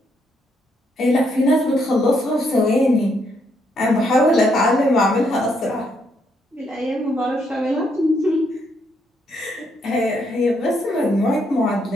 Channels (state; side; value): normal; both; correlation 0.75